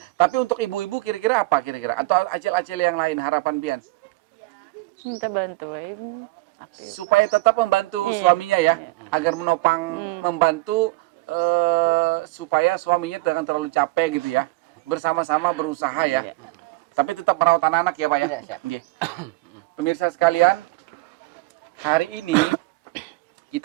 tapi untuk ibu-ibu kira-kira apa kira-kira? Atau acil-acil yang lain harapan pian? Minta bantuin. Supaya tetap membantu Iya. suaminya ya, agar menopang membantu supaya suaminya jangan terlalu capek gitu ya. Bersama-sama berusaha ya. Iya. Tapi tetap merawat anak-anak ya Pak ya. Iya, siap. Nggih. Pemirsa sekalian, hari ini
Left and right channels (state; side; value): quieter; left; 21.5 dB